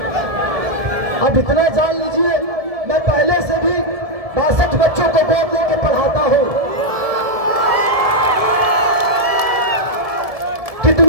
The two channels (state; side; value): late; left; 1.7 ms